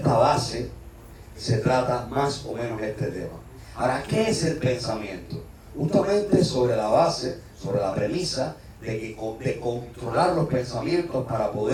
base se trata más o menos este tema. Ahora, ¿qué es el pensamiento? Justamente sobre la base, sobre la premisa de controlar los pensamientos para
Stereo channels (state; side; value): identical; both; correlation 1.00